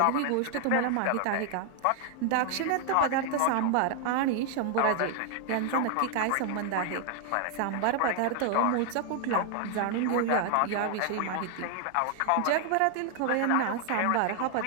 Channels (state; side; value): different; both; correlation 0.00